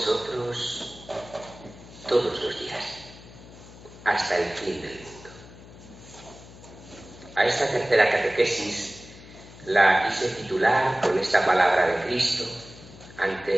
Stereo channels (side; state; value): left; noise; hum, 19 dB below the sound